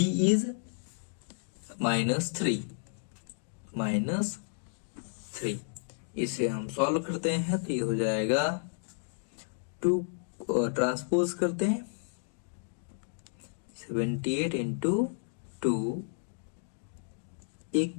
is -3। इसे हम solve करते हैं तो ये हो जाएगा 2 ट्रांसपोज करते हैं 78 into 2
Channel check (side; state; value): right; silent; digital silence